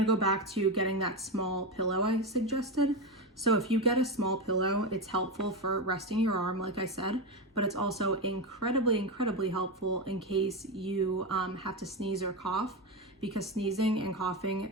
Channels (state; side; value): normal; both; correlation 0.15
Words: go back to getting that small pillow I suggested. So if you get a small pillow, it's helpful for resting your arm, like I said, but it's also incredibly helpful in case you have to sneeze or cough, because sneezing and